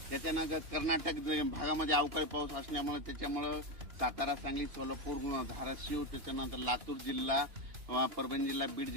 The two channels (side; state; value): left; late; 2.8 ms